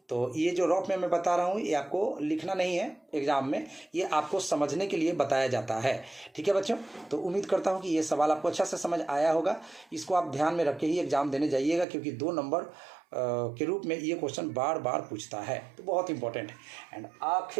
तो ये जो रफ में मैं बता रहा हूँ ये आपको लिखना नहीं है एग्जाम में, ये आपको समझने के लिए बताया जाता है। ठीक है बच्चों, तो उम्मीद करता हूँ कि ये सवाल आपको अच्छा से समझ आया होगा। इसको आप ध्यान में रख के ही एग्जाम देने जाइएगा, क्योंकि 2 नंबर के रूप में ये क्वेश्चन बार बार पूछता है, तो बहुत इंपॉर्टेंट है। एंड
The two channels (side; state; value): left; drops out; at 11.9 s